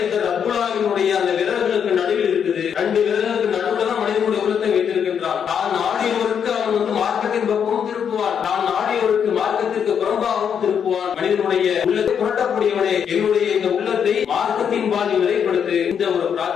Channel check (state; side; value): quieter; right; 7.7 dB